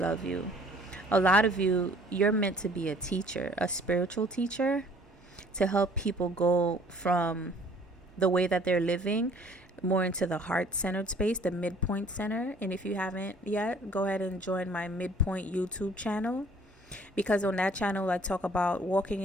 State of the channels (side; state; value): both; normal; correlation 0.55